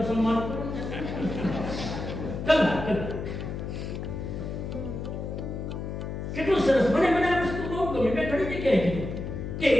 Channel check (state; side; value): noise; left; hum, 6 dB below the sound